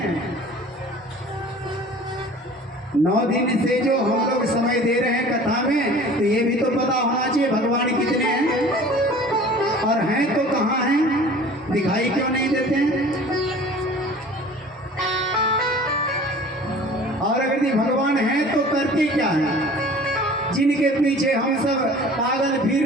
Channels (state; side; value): normal; both; correlation 0.45